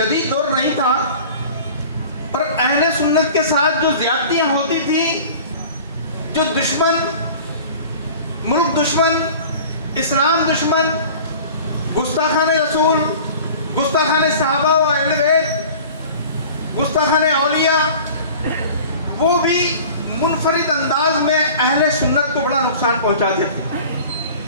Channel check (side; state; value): both; inverted; correlation -0.42